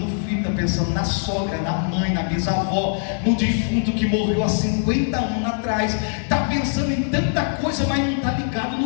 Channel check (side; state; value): right; silent; digital silence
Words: filho, está pensando na sogra, na mãe, na bisavó, no defunto que morreu há 50 anos atrás. Está pensando em tanta coisa, mas não está ligado